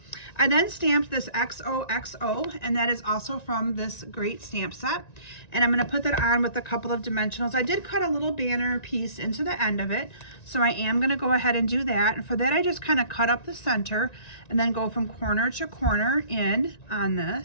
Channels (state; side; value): late; right; 1.9 ms